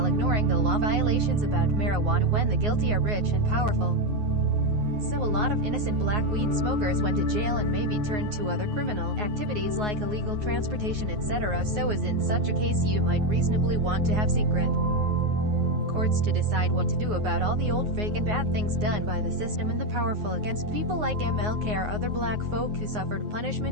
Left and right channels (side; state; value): left; late; 9.5 ms